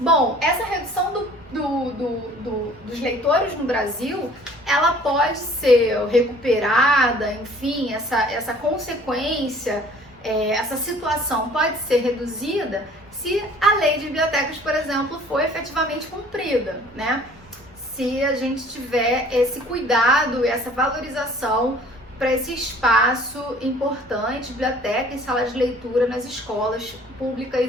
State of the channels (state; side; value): normal; both; correlation 0.52